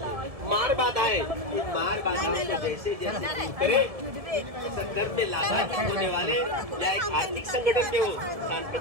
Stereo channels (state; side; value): late; left; 1.7 ms